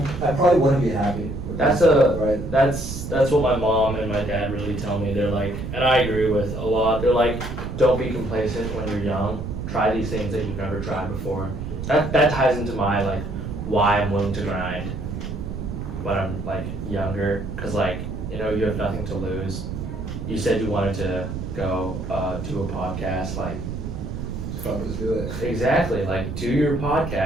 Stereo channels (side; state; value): right; noise; rumble, 6 dB below the sound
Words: probably wouldn't be happy. with That's myself, right. that's what my mom and my dad really tell me. They're like, and I agree with a lot. They're like, don't be complacent when you're young. Try these things that you've never tried before. That ties into my like why I'm willing to grind when I'm like younger, because like you know you have nothing to lose. You said you wanted to go do a podcast, like Fuck, just do it. exactly, like do your